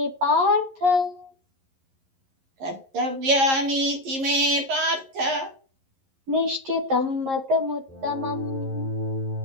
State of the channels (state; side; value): late; left; 11 ms